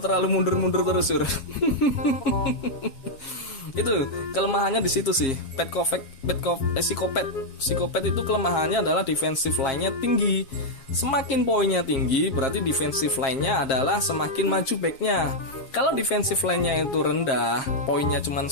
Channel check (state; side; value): late; right; 7.3 ms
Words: mundur-mundur terus cur. Itu kelemahannya di situ sih. Psikopat itu kelemahannya adalah defensive line-nya tinggi. Semakin poinnya tinggi berarti defensive line-nya adalah semakin maju back-nya. Kalau defensive line-nya itu rendah, poinnya cuma